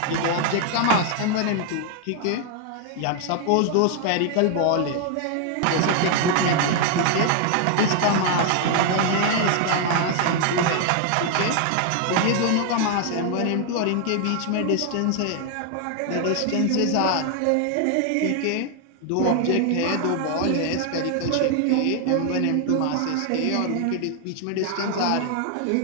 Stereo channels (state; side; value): different; both; correlation 0.00